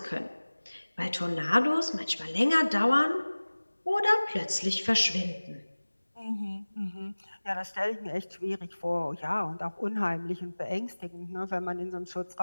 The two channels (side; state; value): both; inverted; correlation -1.00